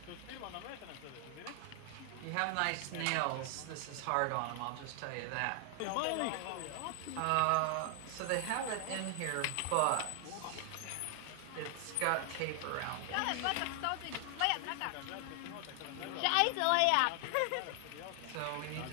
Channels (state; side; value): different; both; correlation 0.00